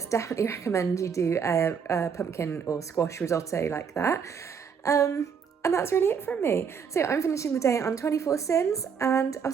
Definitely recommend you do a pumpkin or squash risotto like that. And that's really it from me. So I'm finishing the day on 24 sins, and I'll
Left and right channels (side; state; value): left; quieter; 6.7 dB